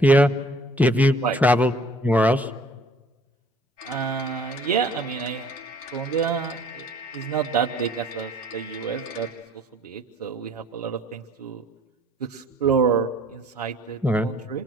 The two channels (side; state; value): both; normal; correlation 0.55